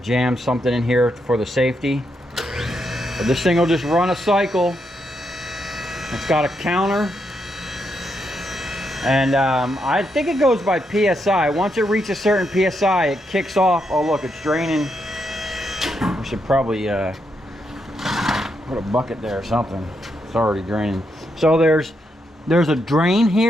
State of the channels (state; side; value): normal; both; correlation 0.81